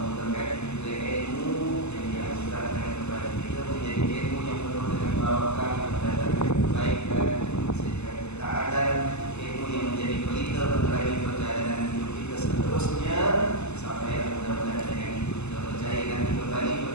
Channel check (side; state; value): right; late; 0.81 ms